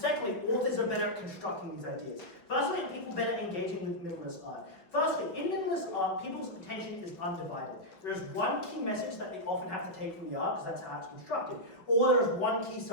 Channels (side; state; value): right; late; 5.3 ms